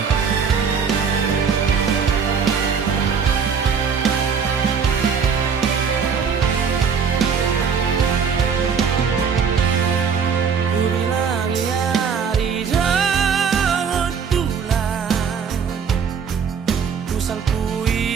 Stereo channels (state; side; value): quieter; left; 6.4 dB